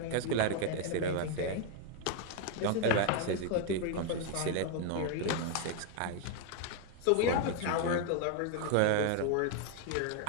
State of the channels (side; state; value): both; different; correlation 0.01